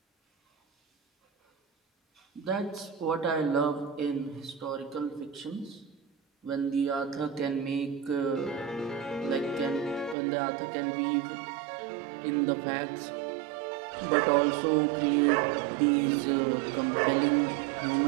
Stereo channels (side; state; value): left; drops out; at 10.2 s